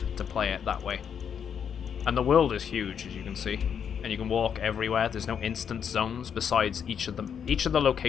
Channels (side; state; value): right; quieter; 7.7 dB